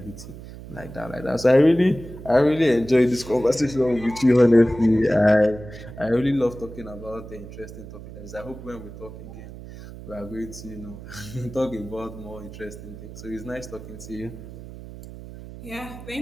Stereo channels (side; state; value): right; noise; hum, 14 dB below the sound